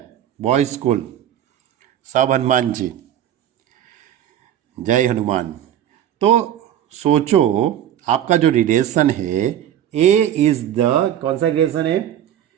बॉयज स्कूल। सब हनुमान जी, जय हनुमान। तो सोचो आपका जो रिलेशन है, ए इज द, कौन सा रिलेशन है?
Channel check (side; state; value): left; quieter; 10.8 dB